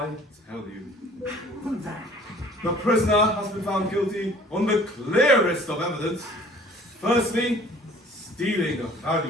tell you? The prisoner has been found guilty on the clearest of evidence. Firstly, stealing a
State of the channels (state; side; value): normal; both; correlation 0.51